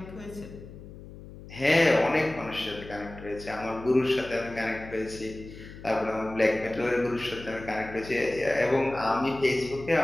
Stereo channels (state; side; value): noise; left; hum, 15 dB below the sound